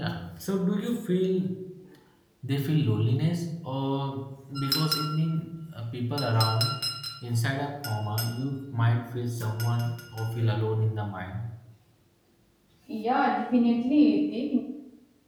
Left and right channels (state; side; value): identical; both; correlation 1.00